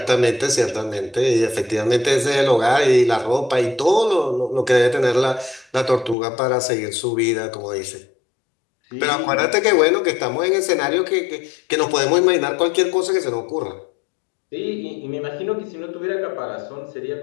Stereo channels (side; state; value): right; drops out; at 6.2 s